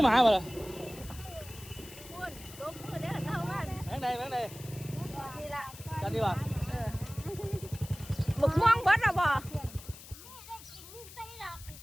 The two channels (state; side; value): noise; left; hiss, 16 dB below the sound